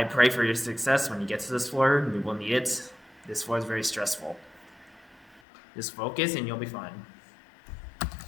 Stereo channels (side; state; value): right; drops out; at 5.4 s